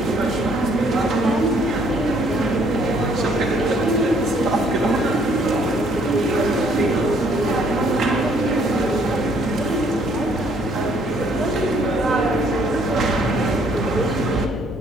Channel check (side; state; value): both; normal; correlation 0.64